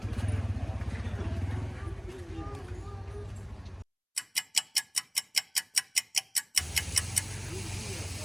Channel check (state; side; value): identical; both; correlation 1.00